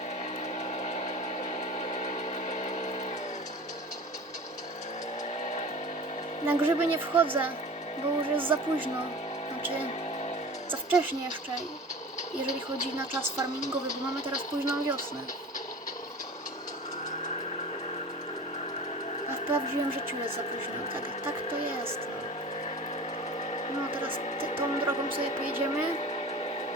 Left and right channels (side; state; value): both; normal; correlation 0.37